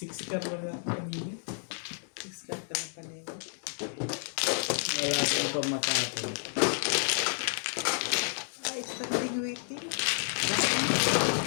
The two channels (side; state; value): right; silent; digital silence